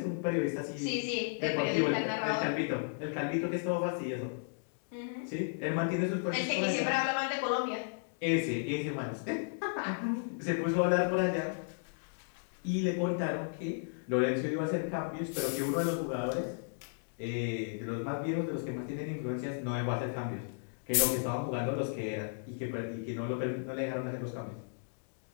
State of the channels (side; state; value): right; silent; digital silence